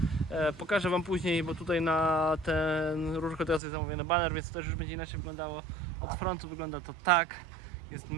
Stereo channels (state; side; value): drops out; left; at 3.6 s